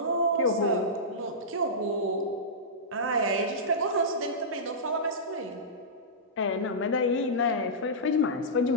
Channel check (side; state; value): both; normal; correlation -0.15